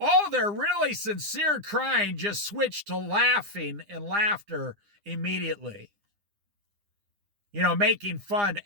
their really sincere crying just switched to laughing and laughter immediately. Making fun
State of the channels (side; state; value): left; late; 9.8 ms